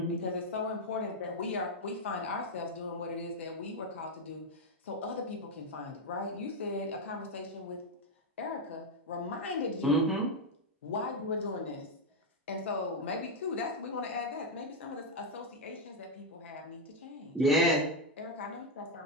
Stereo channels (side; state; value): both; normal; correlation 0.03